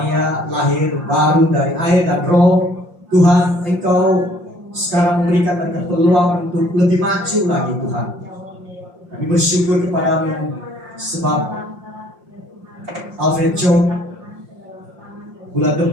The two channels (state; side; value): late; left; 5.6 ms